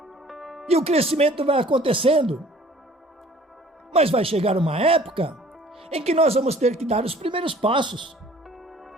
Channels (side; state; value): both; normal; correlation 0.52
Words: e o crescimento vai acontecendo. Mas vai chegar uma época em que nós vamos ter que dar os primeiros passos.